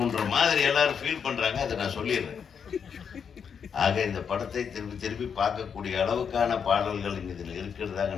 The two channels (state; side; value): quieter; right; 6.9 dB